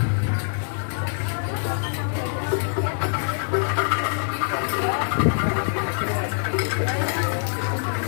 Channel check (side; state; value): right; silent; digital silence